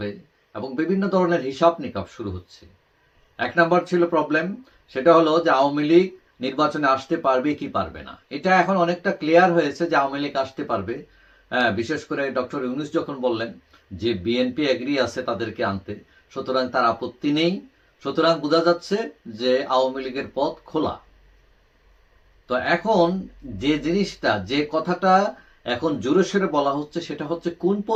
এবং বিভিন্ন ধরনের হিসাব নিকাব শুরু হচ্ছে। এক নাম্বার ছিল প্রবলেম, সেটা হলো যে আওয়ামী লীগ নির্বাচনে আসতে পারবে কি পারবে না। এটা এখন অনেকটা ক্লিয়ার হয়েছে যে আওয়ামী লীগ আসতে পারবে। বিশেষ করে ডক্টর ইউনূস যখন বললেন যে বিএনপি এগ্রি আছে তাদেরকে আনতে, সুতরাং তার আপত্তি নেই। সুতরাং বোঝা যাচ্ছে যে আওয়ামী লীগের পথ খোলা। তো এখন যে জিনিসটা, যে কথাটা এখন জোরে সোরে বলা হচ্ছে সেটা হচ্ছে কোন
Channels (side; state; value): both; identical; correlation 1.00